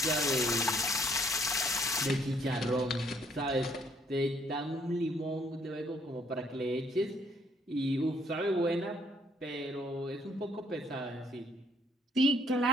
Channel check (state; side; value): normal; both; correlation 0.67